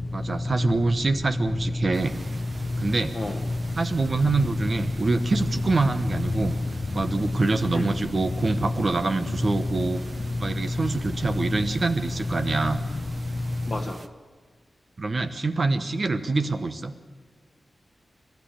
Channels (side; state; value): both; normal; correlation 0.94